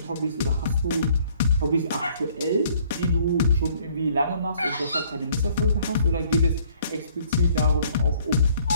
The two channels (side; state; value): both; inverted; correlation -0.61